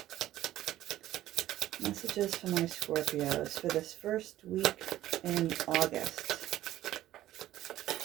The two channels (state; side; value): quieter; left; 13.9 dB